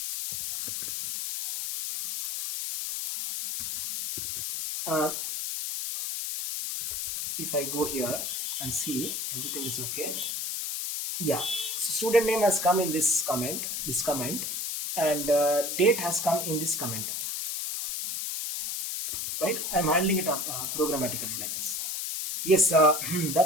If I go here and see everything is okay, yeah. So student name has come in this comment, and date has come in this comment, right? I'm handling it up programmatically like this. Yes,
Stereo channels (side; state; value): left; noise; hiss, 3 dB below the sound